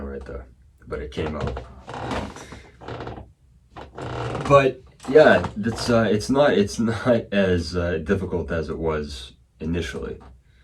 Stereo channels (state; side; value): identical; both; correlation 1.00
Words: right there, but it came out. But yeah, it's not as difficult as it was initially.